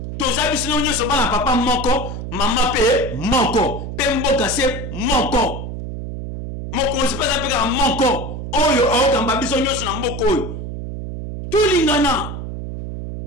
To zabi sino nyoso bana papa moko, mama pe moko. Pe mboka se moko. Mokonzi pesa peka moko oyo aokamba biso nyonso na mboko oyo tulingana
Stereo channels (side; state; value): right; noise; hum, 6 dB below the sound